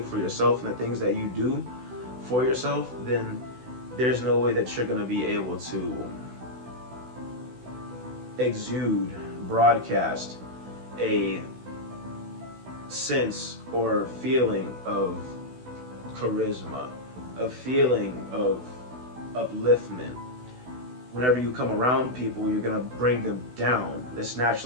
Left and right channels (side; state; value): left; late; 16 ms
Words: for yourself and the things that you do for yourself, then there's no way that you're going to be able to exude, broadcast a sense or feeling of charisma, a feeling of upliftment. Whenever you come around people, you're gonna bring them down. That's